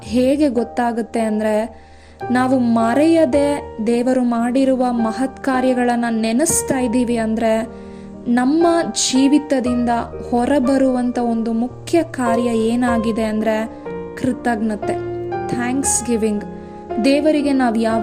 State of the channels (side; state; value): both; identical; correlation 1.00